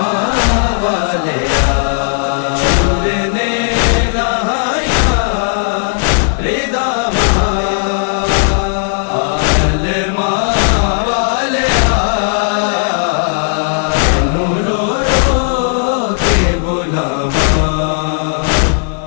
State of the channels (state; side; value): silent; right; digital silence